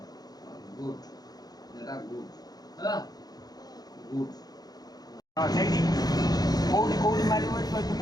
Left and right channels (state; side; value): late; right; 0.19 ms